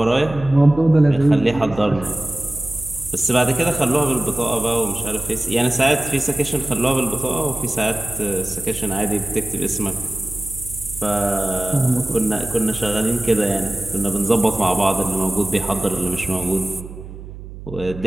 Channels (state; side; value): noise; right; hum, 13 dB below the sound